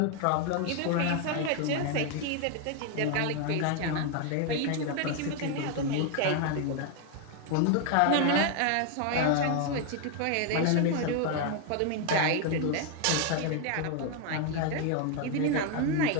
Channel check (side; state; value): both; different; correlation 0.01